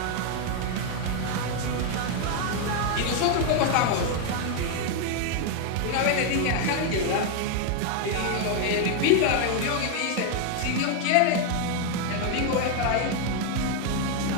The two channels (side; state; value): both; different; correlation 0.00